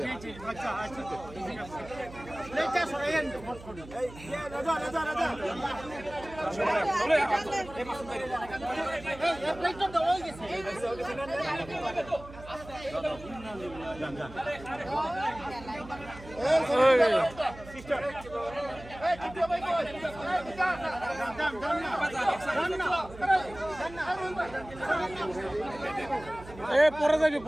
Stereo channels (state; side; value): noise; right; hum, 17 dB below the sound